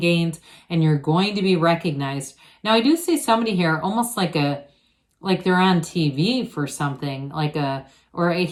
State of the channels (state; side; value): identical; both; correlation 1.00